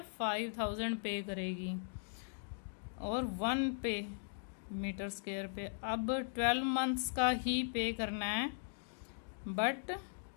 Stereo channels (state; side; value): silent; right; digital silence